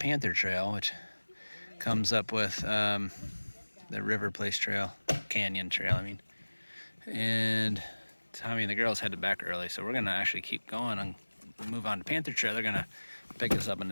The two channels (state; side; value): inverted; both; correlation -1.00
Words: Trail, which comes up with the River Place Trail, Canyon Trail, I mean. And Tommy and the girls headed back early, so we're gonna actually keep going and move on to Panther Trail. They're gonna pick us up in